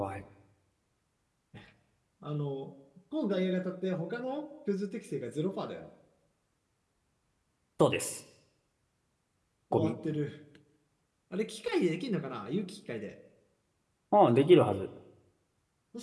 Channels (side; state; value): both; identical; correlation 1.00